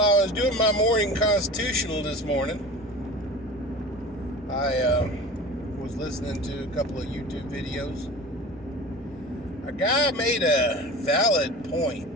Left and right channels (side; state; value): both; normal; correlation 0.36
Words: was doing my morning constitutional this morning, I was listening to a couple of YouTube videos. A guy made a valid point